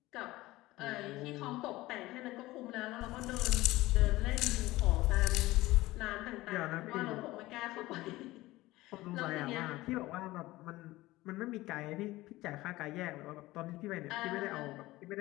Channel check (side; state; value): right; quieter; 18.4 dB